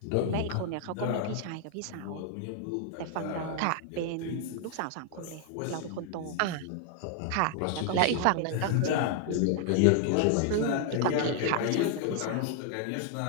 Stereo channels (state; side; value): different; both; correlation 0.00